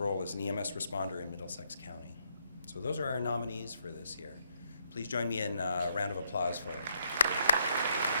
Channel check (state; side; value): inverted; both; correlation -0.75